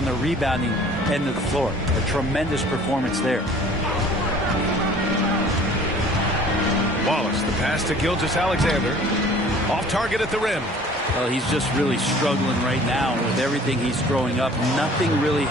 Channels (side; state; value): both; normal; correlation 0.50